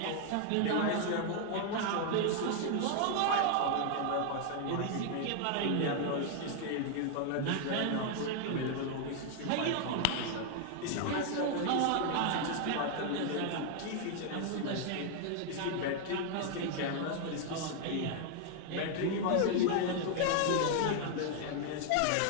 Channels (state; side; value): different; both; correlation 0.00